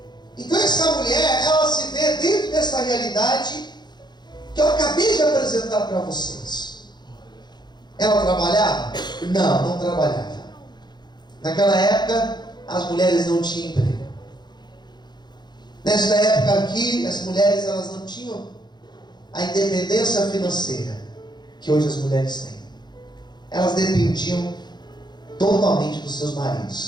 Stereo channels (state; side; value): late; right; 0.21 ms